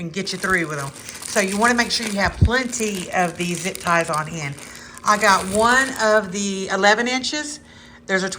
get you through with them. So you want to make sure you have plenty of these zip ties on hand. I got 1 of the 11 inches. There's a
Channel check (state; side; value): identical; both; correlation 1.00